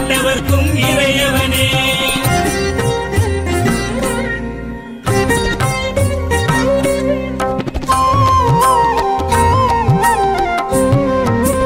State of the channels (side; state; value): both; identical; correlation 1.00